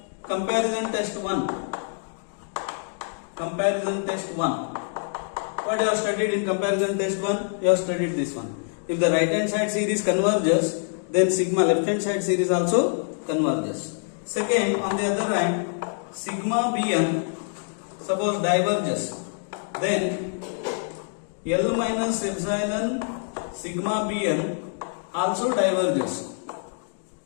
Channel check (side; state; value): right; silent; 61 dB below the other